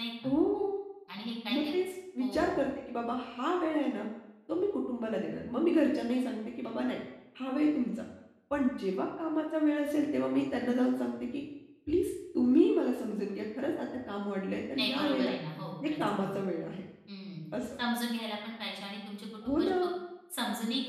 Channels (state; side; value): identical; both; correlation 1.00